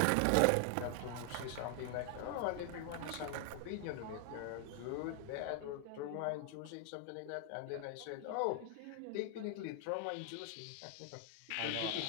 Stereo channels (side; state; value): both; different; correlation 0.00